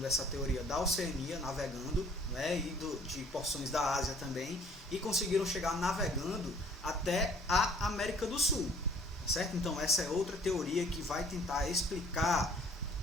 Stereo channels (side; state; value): both; normal; correlation 0.56